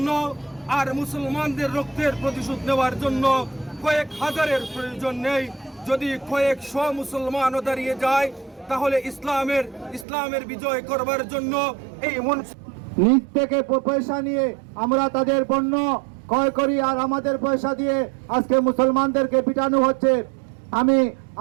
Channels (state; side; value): drops out; left; at 10.1 s